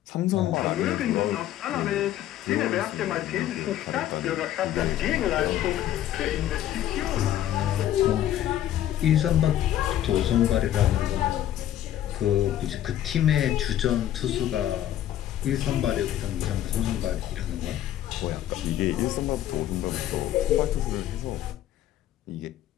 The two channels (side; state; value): right; quieter; 12.1 dB